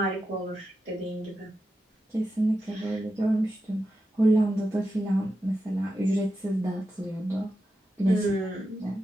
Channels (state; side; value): normal; both; correlation 0.89